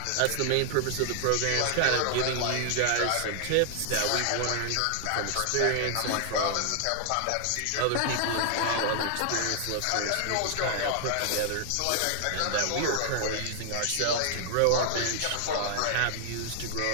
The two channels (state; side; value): different; both; correlation 0.00